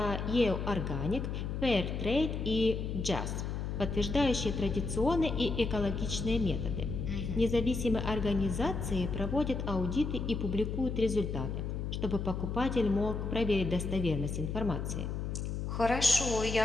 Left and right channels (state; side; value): noise; left; hum, 3 dB below the sound